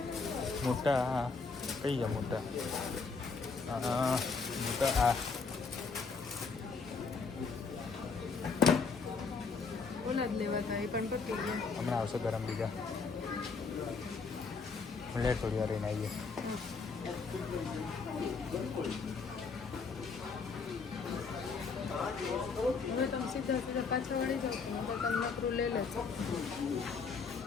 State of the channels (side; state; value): right; quieter; 4.8 dB